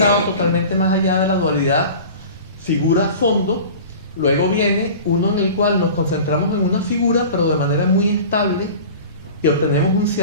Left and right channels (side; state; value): both; inverted; correlation -0.38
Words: totalmente más allá de la dualidad figura-fondo. Luego viene uno en el cual nos concentramos en una figura, pero de manera muy estable, y obtenemos un